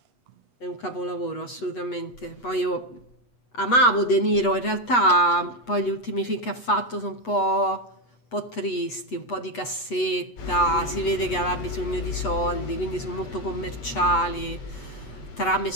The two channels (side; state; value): right; late; 8.1 ms